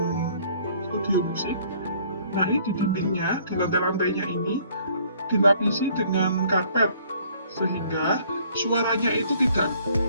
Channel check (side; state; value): both; inverted; correlation -0.59